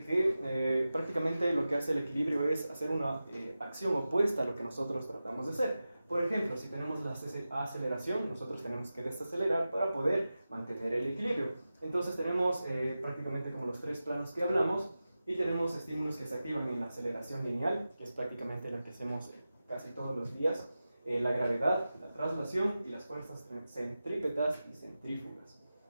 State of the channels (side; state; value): both; inverted; correlation -0.94